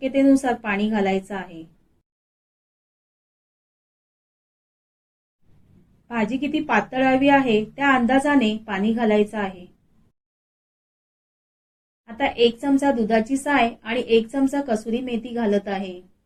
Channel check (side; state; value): both; identical; correlation 1.00